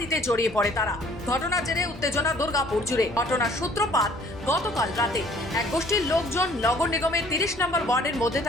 জড়িয়ে পড়ে তারা। ঘটনার জেরে উত্তেজনা দুর্গাপুর জুড়ে। ঘটনার সূত্রপাত গতকাল রাতে। এক গোষ্ঠীর লোকজন নগর নিগমের 30 নম্বর ওয়ার্ডের মধ্যে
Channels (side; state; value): both; normal; correlation 0.56